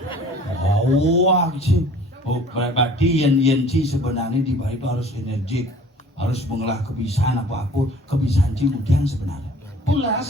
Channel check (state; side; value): normal; both; correlation 0.49